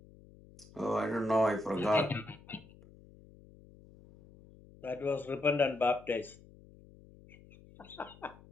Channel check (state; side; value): noise; left; hum, 23 dB below the sound